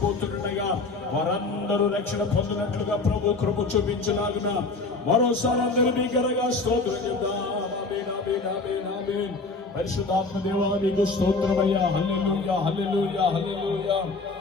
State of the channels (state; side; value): quieter; right; 3.7 dB